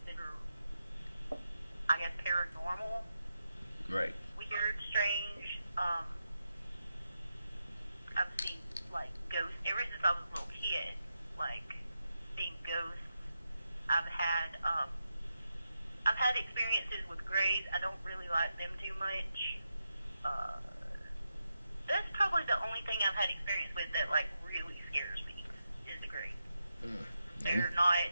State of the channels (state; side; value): inverted; both; correlation -0.87